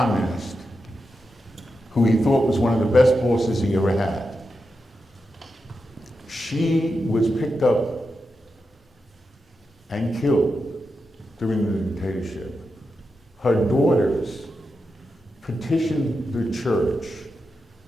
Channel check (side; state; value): both; normal; correlation 0.88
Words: who he thought was one of the best bosses he ever had. She was picked up and killed during the dictatorship. Her daughters petitioned the church